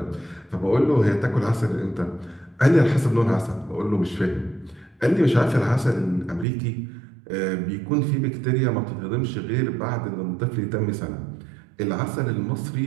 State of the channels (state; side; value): drops out; left; at 6.5 s